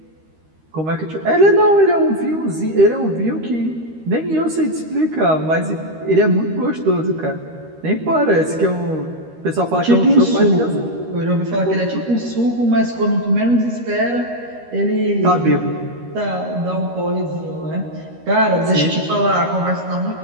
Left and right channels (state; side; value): late; left; 13 ms